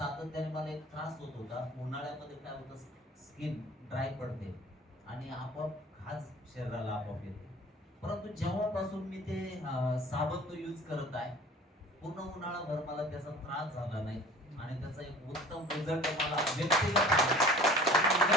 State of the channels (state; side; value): normal; both; correlation 0.45